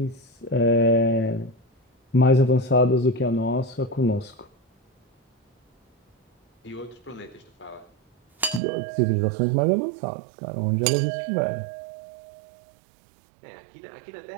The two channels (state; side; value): drops out; left; at 8.6 s